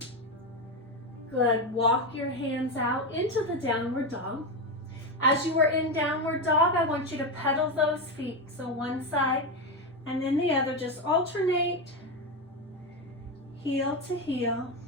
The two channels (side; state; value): both; normal; correlation 0.12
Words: Good. Walk your hands out into the downward dog. As you are in downward dog, I want you to pedal those feet. So one side and then the other. Just alternate. Heel